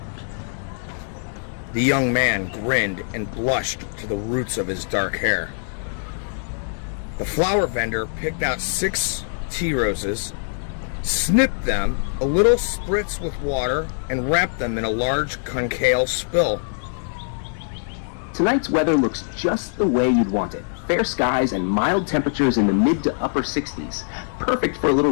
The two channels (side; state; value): right; silent; digital silence